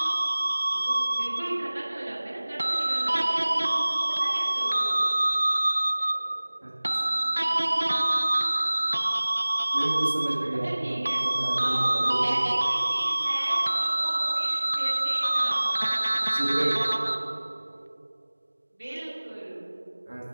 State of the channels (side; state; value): both; inverted; correlation -1.00